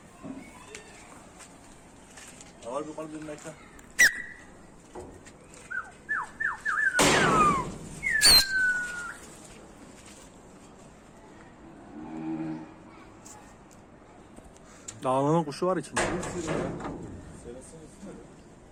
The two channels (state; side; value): identical; both; correlation 1.00